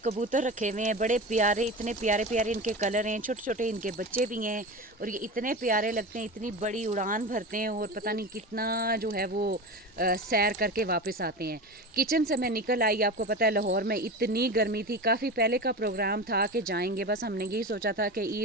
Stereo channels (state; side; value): normal; both; correlation 0.27